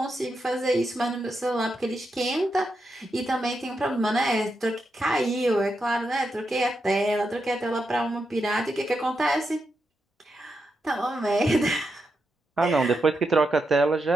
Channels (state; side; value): normal; both; correlation 0.85